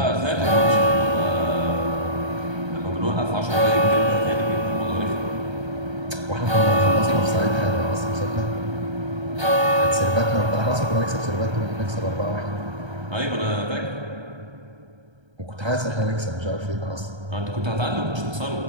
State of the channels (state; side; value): late; left; 1.3 ms